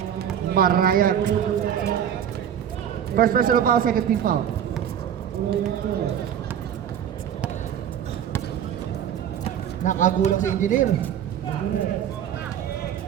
Marayag. First personal foul, second team foul. Nakagulang si engineer.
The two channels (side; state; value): left; quieter; 9.4 dB